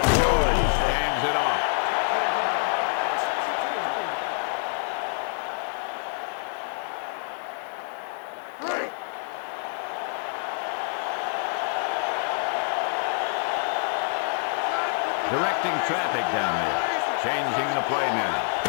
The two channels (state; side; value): silent; right; 57 dB below the other